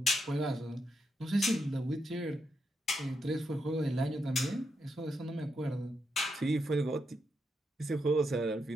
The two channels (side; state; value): both; normal; correlation 0.82